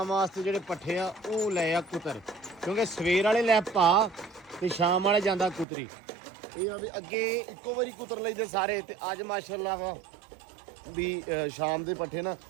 ਵਾਸਤੇ ਜਿਹੜੇ ਪੱਠੇ ਆ ਉਹ ਲੈ ਆ ਕੁਤਰ, ਕਿਉਂਕਿ ਸਵੇਰ ਵਾਲੇ ਲੈ ਪਾ ਤੇ ਸ਼ਾਮ ਵਾਲੇ ਜਾਂਦਾ ਕੁਤਰੀ। ਇਹ ਆ ਵੀ ਅੱਗੇ ਇੱਕੋ ਵਾਰੀ ਕੁਤਰ ਲਈਦੇ ਸਾਰੇ ਤੇ ਅੱਜ ਮਾਸ਼ਾਅੱਲਾ ਵਾ ਵੀ ਸ਼ਾਮ ਦੇ ਪੱਠੇ ਨਾ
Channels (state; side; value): drops out; left; at 5.7 s